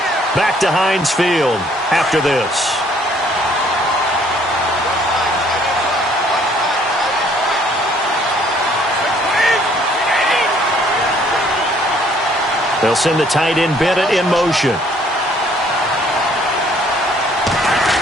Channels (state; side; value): normal; both; correlation 0.62